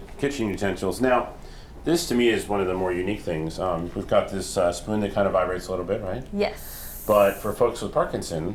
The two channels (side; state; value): both; identical; correlation 1.00